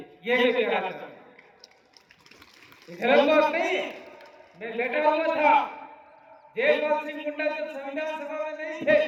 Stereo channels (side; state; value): both; identical; correlation 1.00